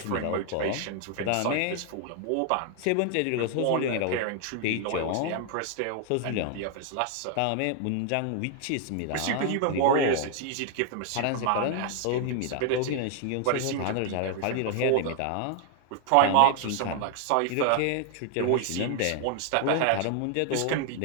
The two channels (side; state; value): both; different; correlation 0.00